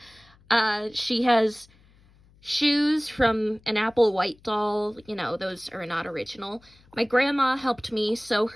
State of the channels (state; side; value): noise; left; hum, 29 dB below the sound